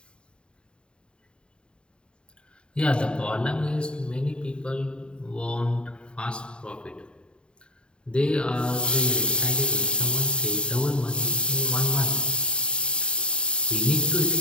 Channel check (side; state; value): right; late; 0.052 ms